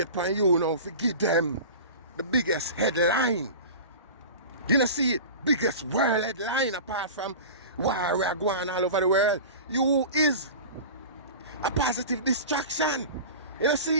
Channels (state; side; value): inverted; both; correlation -0.34